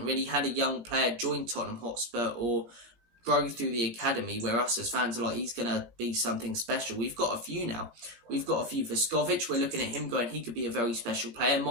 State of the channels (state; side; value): late; left; 18 ms